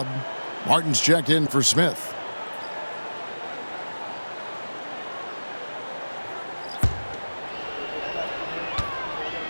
Martin's checked in for Smith.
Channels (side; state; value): both; inverted; correlation -1.00